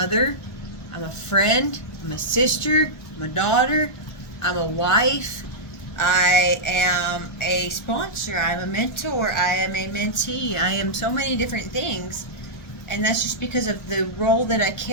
I'm a friend, I'm a sister, I'm a daughter, I'm a wife, I am a sponsor, I'm a mentor, I am a mentee, I am so many different things. And that's just because of the role that I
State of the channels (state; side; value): late; right; 1.4 ms